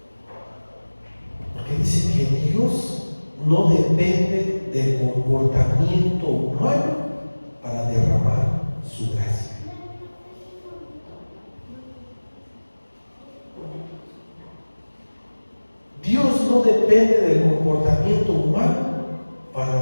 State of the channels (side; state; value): both; inverted; correlation -1.00